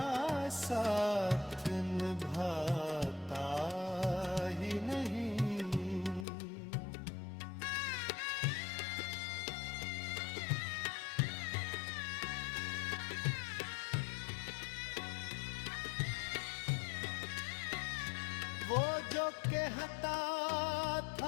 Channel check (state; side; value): drops out; right; at 6.2 s